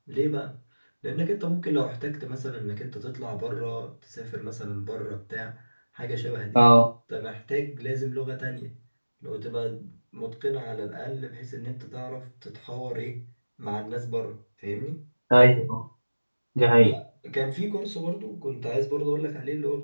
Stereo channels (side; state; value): both; inverted; correlation -1.00